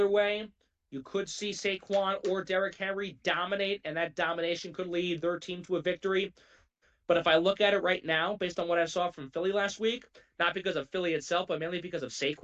way. You could see Saquon or Derrick Henry dominate, and that domination could lead their team to a victory. But if I look at it right now, based on what I saw from Philly last week, not because of Philly itself, but mainly because of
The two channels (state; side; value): identical; both; correlation 1.00